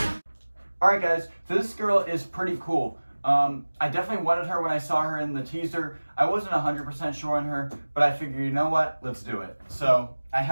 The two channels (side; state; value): both; inverted; correlation -1.00